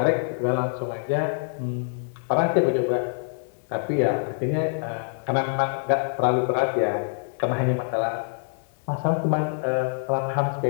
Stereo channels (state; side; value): silent; right; digital silence